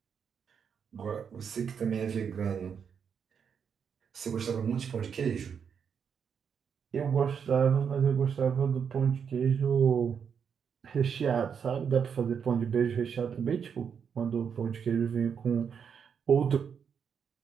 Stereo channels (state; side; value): quieter; left; 7.0 dB